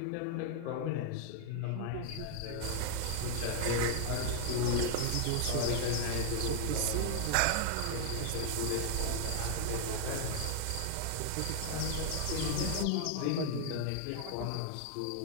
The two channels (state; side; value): different; both; correlation 0.00